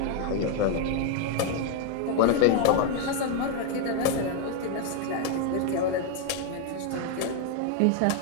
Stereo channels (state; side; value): different; both; correlation 0.00